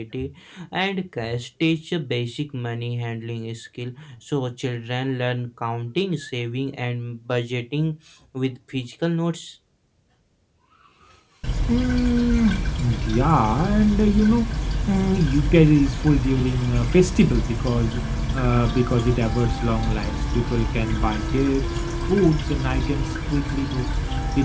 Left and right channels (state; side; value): identical; both; correlation 1.00